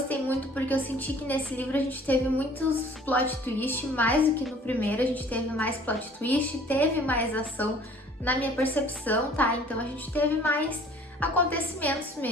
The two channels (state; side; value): normal; both; correlation 0.52